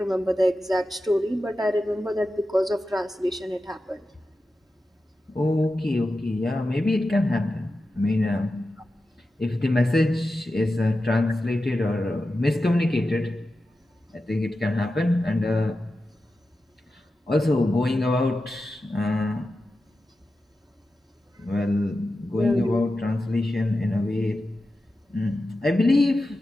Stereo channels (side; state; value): both; normal; correlation 0.92